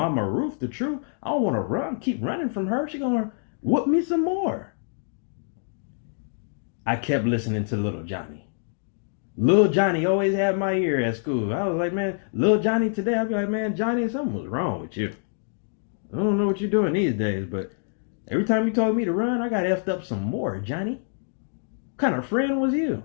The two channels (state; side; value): silent; right; digital silence